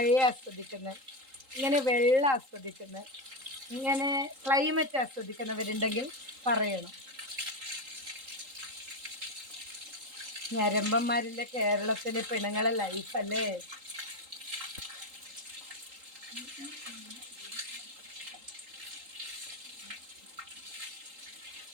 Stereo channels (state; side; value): late; left; 3.8 ms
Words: ആസ്വദിക്കുന്നത്, ഇങ്ങനെ വെള്ളം ആസ്വദിക്കുന്നത്, ഇങ്ങനെ ക്ലൈമറ്റ് ആസ്വദിക്കുന്നവരുണ്ടെങ്കിൽ പറയണം. ഞരമ്പന്മാരിലെ കേരളത്തിലെ പെണ്ണുങ്ങളെ ലൈഫല്ലേ.